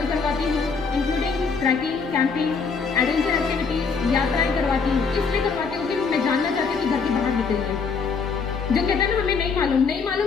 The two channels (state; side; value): quieter; right; 5.2 dB